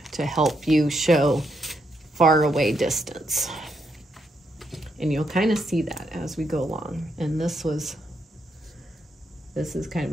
to help you show far away distance. And you'll kind of see that as we go along. And this is kind of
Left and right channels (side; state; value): both; normal; correlation 0.78